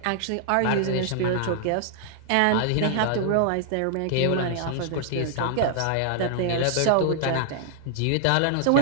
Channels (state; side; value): different; both; correlation -0.01